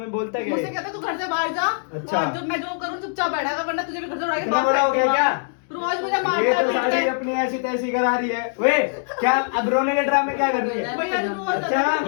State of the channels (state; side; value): silent; right; digital silence